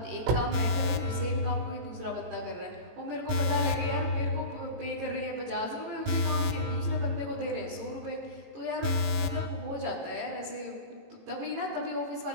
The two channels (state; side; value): late; left; 18 ms